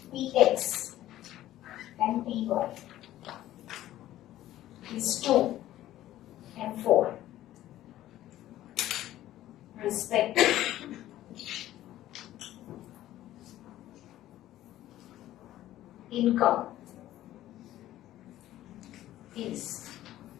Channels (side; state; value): right; quieter; 14.0 dB